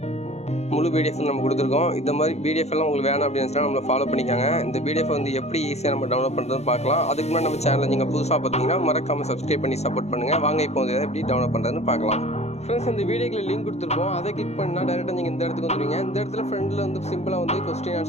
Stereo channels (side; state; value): right; late; 0.31 ms